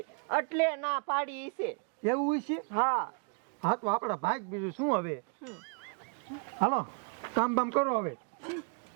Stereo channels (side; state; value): left; quieter; 36.9 dB